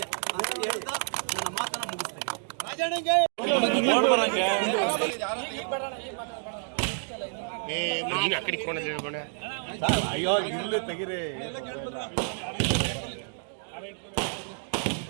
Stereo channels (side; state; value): left; silent; 59 dB below the other